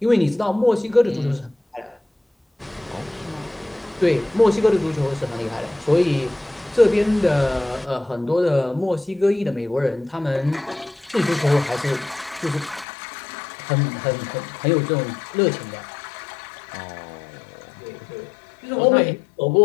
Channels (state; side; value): drops out; right; at 12.9 s